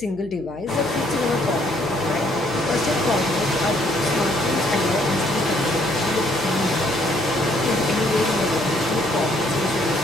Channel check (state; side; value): noise; left; hum, 20 dB below the sound